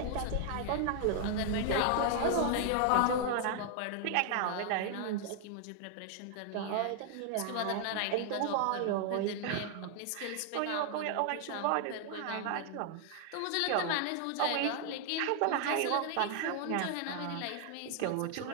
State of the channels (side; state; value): both; different; correlation 0.00